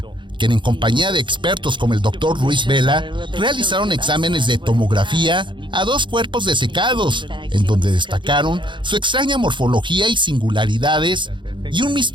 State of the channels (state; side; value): late; left; 0.23 ms